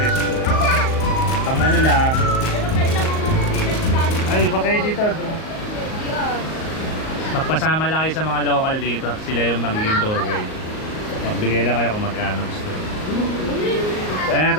Pang ano lang. Ay, ba kayo dito? Magpasama lang kayo sa mga local dito. Sila yung magiging tour guide. Magbigay lang kayo kung magkano gusto. Ayan,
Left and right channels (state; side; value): late; right; 38 ms